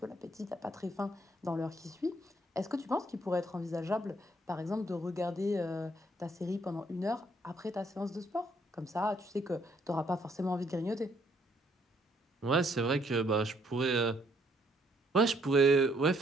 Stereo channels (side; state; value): both; normal; correlation 0.69